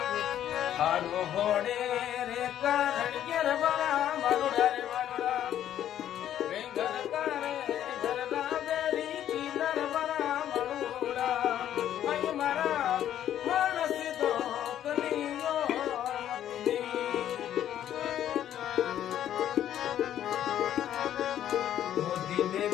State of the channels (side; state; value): right; quieter; 11.1 dB